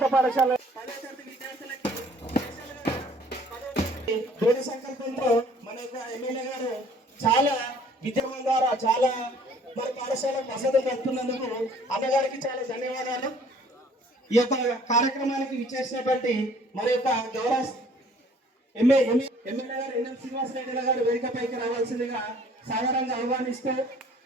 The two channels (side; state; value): both; normal; correlation 0.56